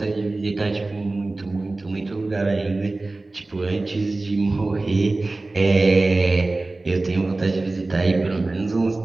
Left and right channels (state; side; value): quieter; left; 3.1 dB